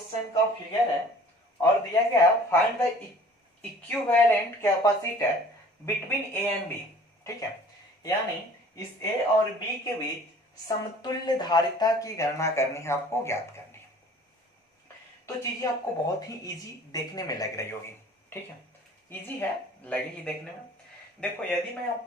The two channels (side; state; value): both; normal; correlation 0.50